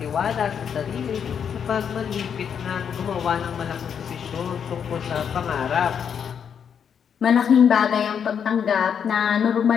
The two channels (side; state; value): right; quieter; 7.6 dB